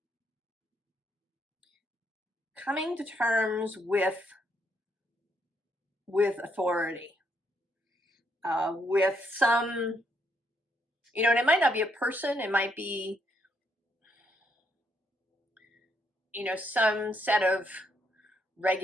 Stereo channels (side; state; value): both; normal; correlation 0.74